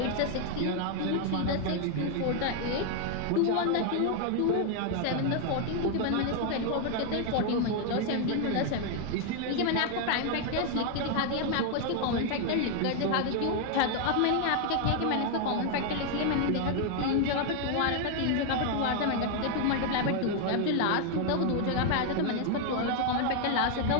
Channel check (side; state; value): both; different; correlation 0.00